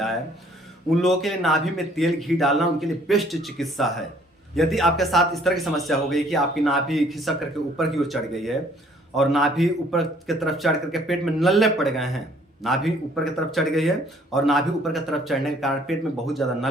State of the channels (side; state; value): both; normal; correlation 0.60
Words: है, उन लोगों के लिए नाभि में तेल घी डालना उनके लिए बेस्ट चिकित्सा है। यदि आपके साथ इस तरह की समस्या हो गई कि आपकी नाभि खिसक करके ऊपर की ओर चढ़ गई है और नाभि ऊपर की तरफ चढ़ करके पेट में नल्ले पड़ गए हैं, नाभि ऊपर की तरफ चढ़ गई है और नाभि ऊपर की तरफ चढ़ने के कारण पेट में बहुत ज़्यादा